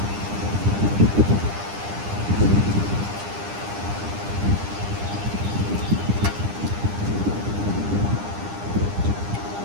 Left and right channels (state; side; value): late; left; 9.9 ms